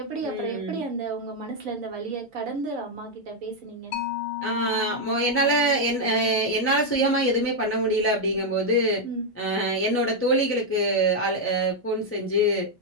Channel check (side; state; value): both; normal; correlation 0.00